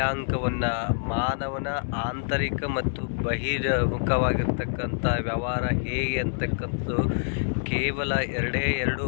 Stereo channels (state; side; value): silent; right; digital silence